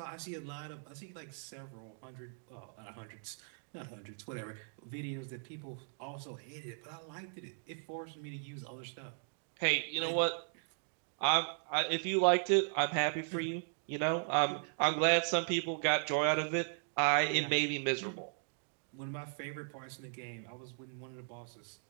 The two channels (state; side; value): silent; left; digital silence